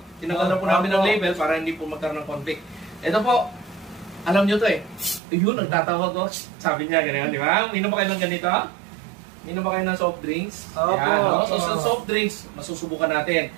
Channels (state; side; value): drops out; left; at 5.2 s